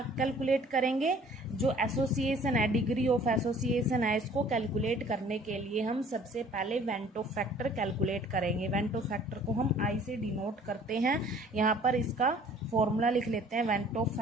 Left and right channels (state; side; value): normal; both; correlation 0.53